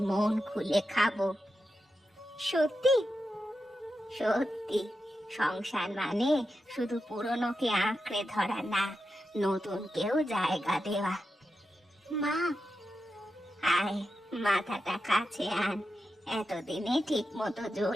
মন খুলে খাবো। সত্যি? সত্যি। সংসার মানে শুধু পুরনোকে আঁকড়ে ধরা না, নতুনকেও জায়গা দেওয়া। মা, আয় মাথাটা কাছে আন, এতদিনে ঠিক মতো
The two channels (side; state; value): both; normal; correlation 0.89